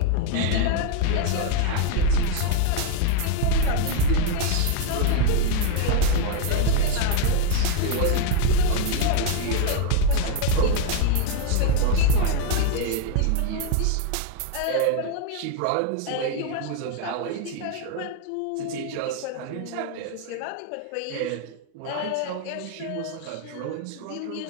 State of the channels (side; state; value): both; different; correlation 0.00